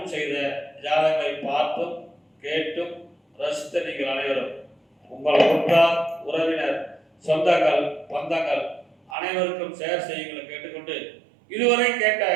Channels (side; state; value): left; drops out; at 9.2 s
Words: செய்த ஜாதகங்களை பார்த்தும் கேட்டும் ரசித்த நீங்கள் அனைவரும் உங்கள் உற்றார் உறவினர் சொந்தங்கள் பந்தங்கள் அனைவருக்கும் ஷேர் செய்யுங்களை கேட்டுக்கொண்டு இதுவரை கேட்ட